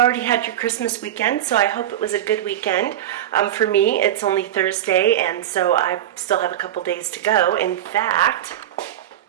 had your Christmas weekend, so I hope it was a good weekend. For me, it's only Thursday, and so I still have a couple days to go. In fact,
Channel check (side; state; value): left; quieter; 11.8 dB